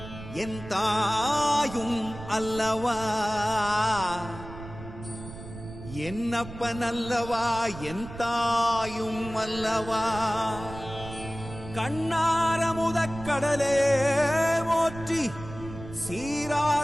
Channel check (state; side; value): noise; right; rumble, 13 dB below the sound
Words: என் தாயும் அல்லவா என்னப்பன் அல்லவா என் தாயும் அல்லவா கண்ணாரமுதக்கடலே போற்றி